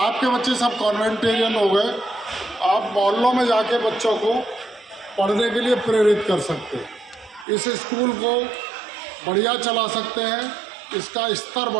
बच्चे सब कॉन्वेंटेरियन हो गए, आप मोहल्लों में जाके बच्चों को पढ़ने के लिए प्रेरित कर सकते हैं। इस स्कूल को बढ़िया चला सकते हैं, इसका स्तर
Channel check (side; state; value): left; drops out; at 7.5 s